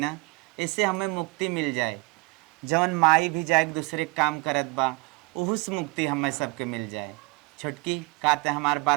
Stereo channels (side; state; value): left; quieter; 26.2 dB